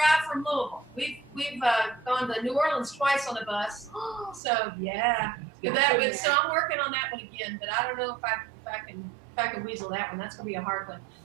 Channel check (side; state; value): left; drops out; at 4.4 s